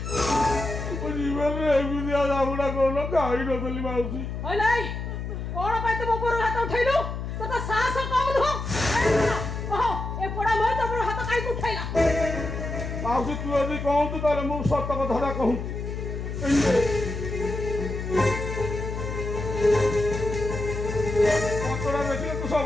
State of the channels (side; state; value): left; noise; hum, 5 dB below the sound